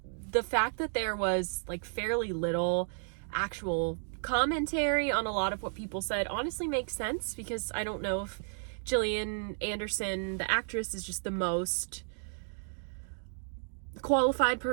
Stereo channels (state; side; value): silent; left; digital silence